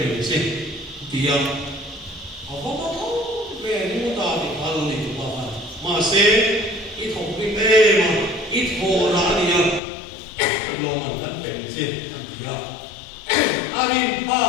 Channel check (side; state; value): right; drops out; at 9.8 s